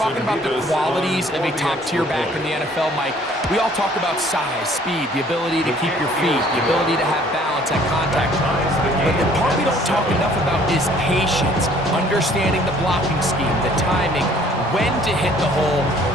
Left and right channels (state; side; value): normal; both; correlation 0.57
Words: about the qualities of a top-tier back in the NFL, Mike, we all talk about size, speed, the ability to keep your feet, the ability to have balance at contact. But the part we don't talk enough about is patience, understanding the blocking scheme, the timing, when to hit the hole,